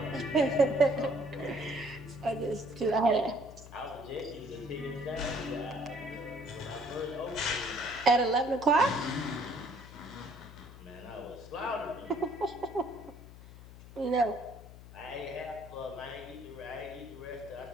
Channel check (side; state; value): left; noise; hum, 16 dB below the sound